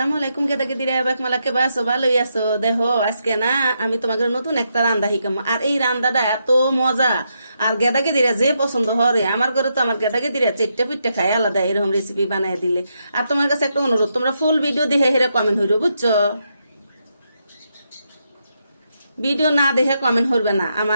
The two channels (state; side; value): inverted; both; correlation -0.81